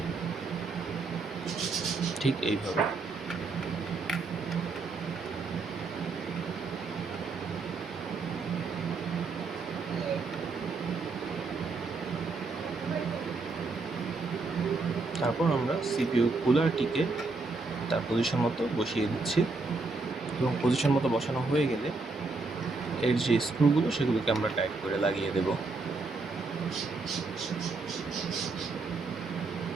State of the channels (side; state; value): left; quieter; 3.8 dB